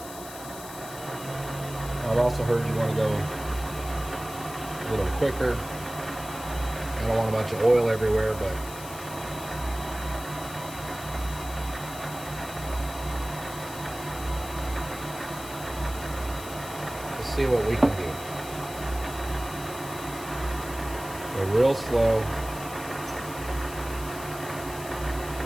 I've also heard you want to go a little quicker. I don't want a bunch of oil everywhere, but let's see what we can do. Go real slow.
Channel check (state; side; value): noise; left; hiss, 13 dB below the sound